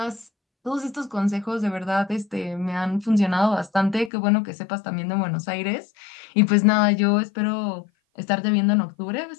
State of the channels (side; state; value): right; drops out; at 4.1 s